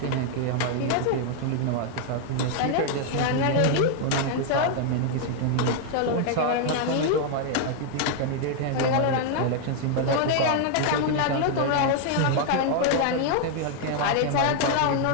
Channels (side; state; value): both; different; correlation 0.00